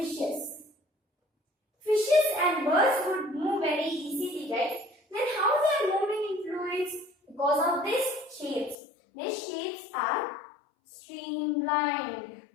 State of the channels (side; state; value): right; drops out; at 8.8 s